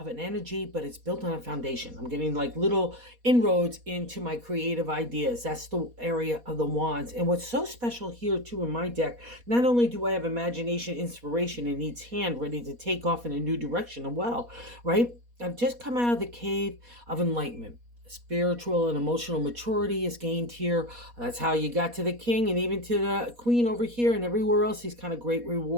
an energy, but it's built on a foundation. I'm getting like little inroads into my creative ideas. That's the area of the wands. And what's so special here too in my deck, not only do I have imagination, inspiration in each hand ready to take off in a new direction as well, right? I've just come out of the cave of enlightenment. Spiritual and emotional maturity is gained here. That's how you got to the king and even to the queen over here and everywhere else, these kind of great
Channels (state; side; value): late; left; 4.2 ms